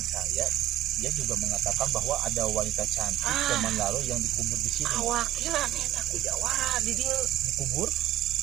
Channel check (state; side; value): quieter; left; 13.4 dB